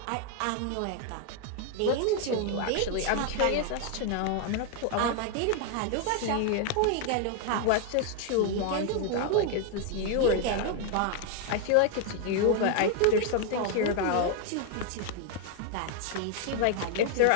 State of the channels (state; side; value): different; both; correlation 0.00